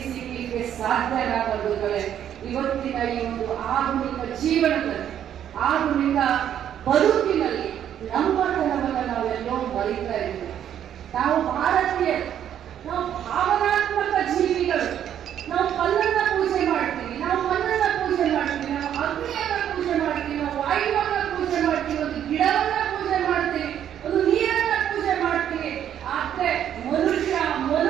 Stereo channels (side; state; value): left; quieter; 10.0 dB